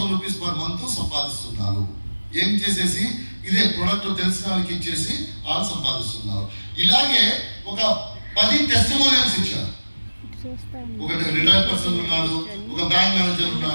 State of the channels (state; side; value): inverted; both; correlation -1.00